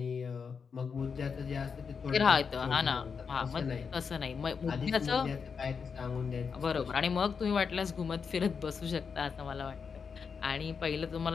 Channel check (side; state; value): right; quieter; 5.9 dB